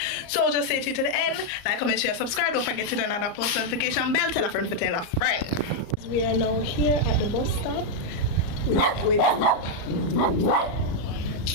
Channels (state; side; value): late; right; 34 ms